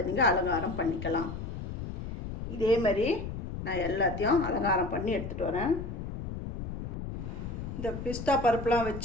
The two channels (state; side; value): noise; left; rumble, 6 dB below the sound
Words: நீங்கள் அலங்காரம் பண்ணிக்கலாம். இதே மாதிரி நான் எல்லாத்தையும் அலங்காரம் பண்ணி எடுத்துகிட்டு வரேன். இந்த பிஸ்தா பருப்புலாம்